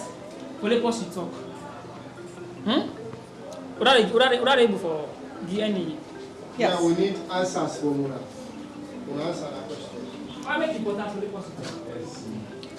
for the person to talk? What are they able for DNA? Yes. Yeah, we need answers from Muna. We'll answer that question. Why make it important for the person to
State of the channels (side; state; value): both; identical; correlation 1.00